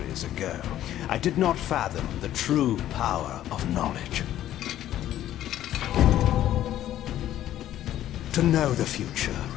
ago, I did not fathom the true power of knowledge. To know the future,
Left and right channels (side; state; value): right; quieter; 12.5 dB